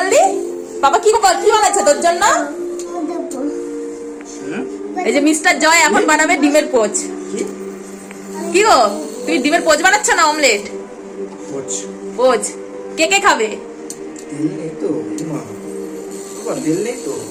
পাপা কি বানাচ্ছে তোর জন্য? এই যে মিস্টার জয় এখন বানাবে ডিমের পোচ। কি গো, তুমি ডিমের পোচ বানাচ্ছ না অমলেট? পোচ কে কে খাবে?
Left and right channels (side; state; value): both; identical; correlation 1.00